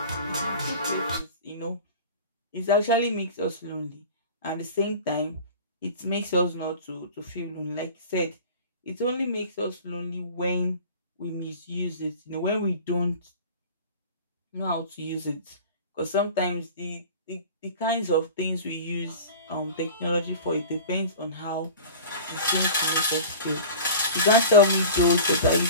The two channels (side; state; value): both; inverted; correlation -0.38